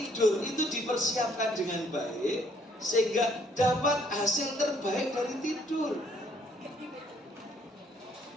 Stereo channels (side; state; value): both; normal; correlation 0.66